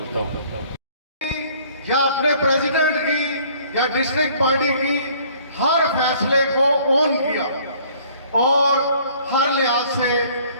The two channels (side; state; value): both; inverted; correlation -0.56